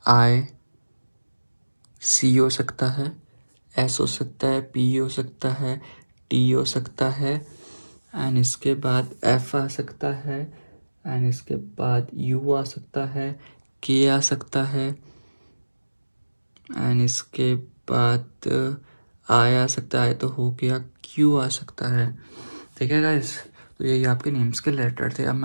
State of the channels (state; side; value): inverted; both; correlation -1.00